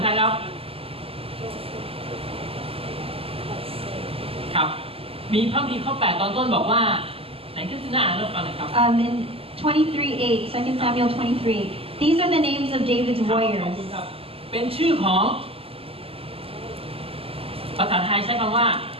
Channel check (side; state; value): left; late; 0.28 ms